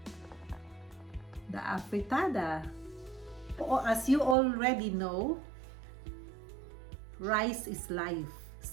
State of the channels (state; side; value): drops out; left; at 4.4 s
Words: the afritada. As you already know, rice is life.